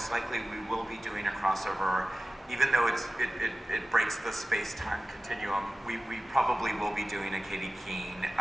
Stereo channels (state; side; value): normal; both; correlation 0.96